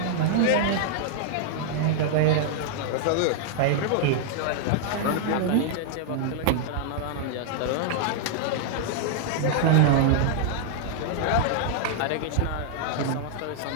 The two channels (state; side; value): different; both; correlation -0.01